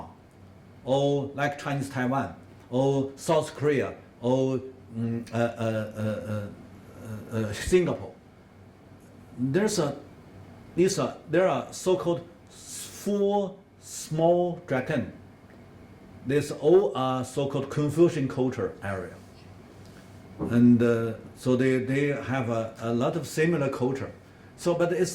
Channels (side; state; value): both; identical; correlation 1.00